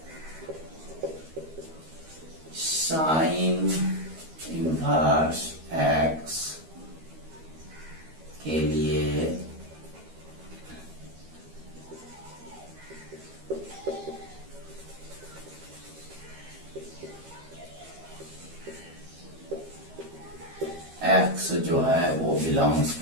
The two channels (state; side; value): late; left; 13 ms